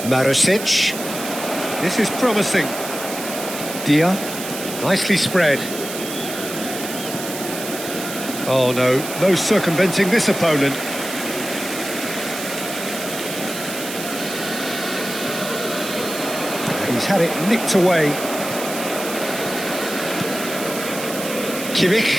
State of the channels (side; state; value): right; noise; hiss, 8 dB below the sound